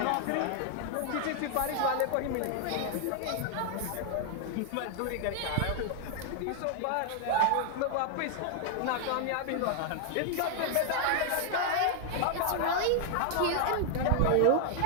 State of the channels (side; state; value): both; different; correlation 0.00